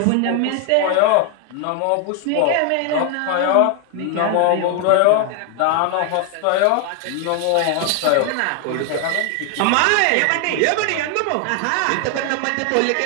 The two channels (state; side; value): different; both; correlation 0.00